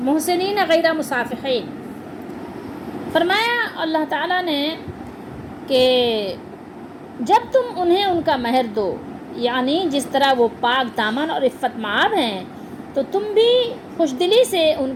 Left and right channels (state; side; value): identical; both; correlation 1.00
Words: محسنین غیر مصافحین، فرمایا اللہ تعالیٰ نے کہ جب تم انہیں ان کا مہر دو، یعنی جس طرح وہ پاک دامن اور عفت مآب ہیں تو تم بھی خوش دلی سے ان